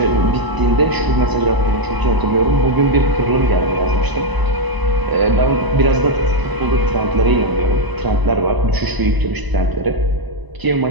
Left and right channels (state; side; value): late; left; 1.0 ms